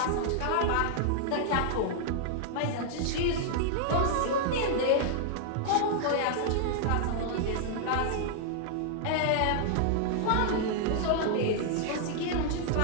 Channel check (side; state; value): both; different; correlation -0.01